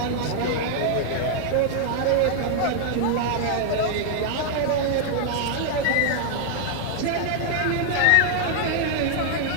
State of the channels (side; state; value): both; different; correlation 0.00